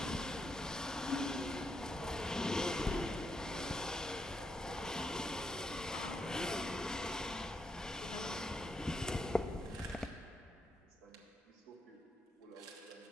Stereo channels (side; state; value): both; normal; correlation 0.81